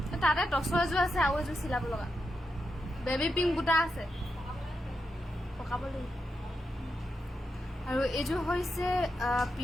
তাতে টছৰ এযোৰ আছে আৰু এযোৰ চিলাব লগা বেবী পিংক বুটা আছে পকাব লাগিব আৰু এযোৰ হৈছে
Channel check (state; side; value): normal; both; correlation 0.86